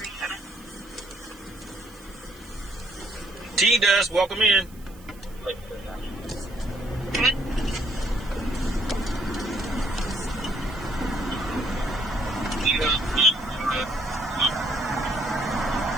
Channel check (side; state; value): right; noise; hiss, 24 dB below the sound